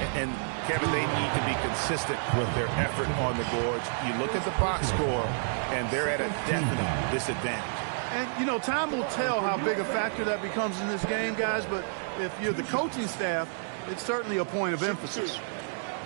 And Kevin, they need to be consistent with their effort on the boards. You look at the box score, and they're at a definite disadvantage. And, you know, time will tell how big a factor that becomes in this game, guys, but if you're the coaching staff, it's certainly a point of emphasis.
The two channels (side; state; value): left; silent; digital silence